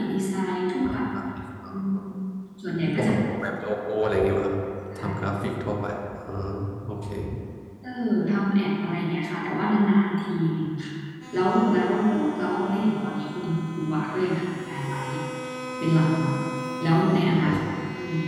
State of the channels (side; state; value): both; identical; correlation 1.00